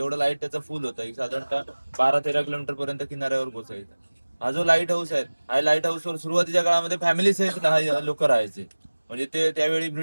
लाईट त्याचा फुल होता, साधारणतः 12-13 किलोमीटर पर्यंत किनाऱ्यावर पोहोचायचा. हा जो लाईट हाऊस आहे, हा लाईट हाऊसवर सुरुवातीच्या काळामध्ये फॅमिली सहित लोक राहायचे. म्हणजे ते त्यावेळी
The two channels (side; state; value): both; inverted; correlation -1.00